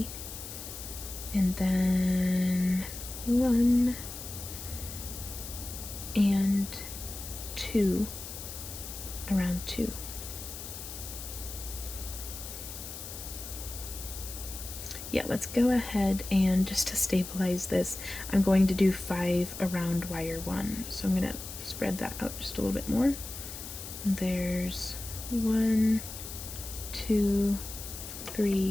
and then 1 and 2 around 2. Yeah, let's go ahead and just to stabilize this, I'm going to do 5 around wire 1. So I'm going to spread that out just a little bit more. There's 1, 2,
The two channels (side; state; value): left; noise; hiss, 10 dB below the sound